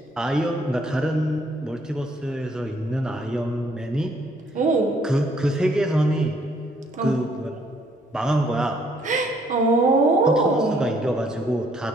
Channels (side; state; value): both; normal; correlation 0.66